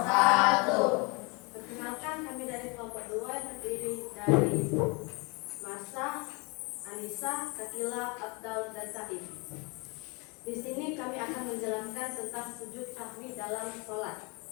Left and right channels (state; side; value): quieter; right; 29.5 dB